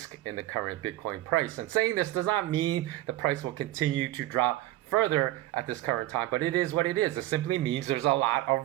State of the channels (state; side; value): quieter; left; 15.8 dB